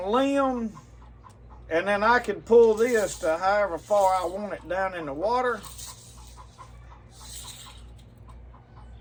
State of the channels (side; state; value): both; identical; correlation 1.00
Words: limb, and then I can pull this to however far I want it down in the water.